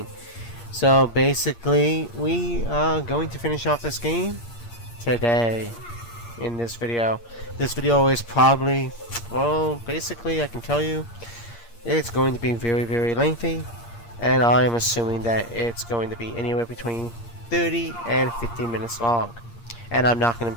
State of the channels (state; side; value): late; right; 8.6 ms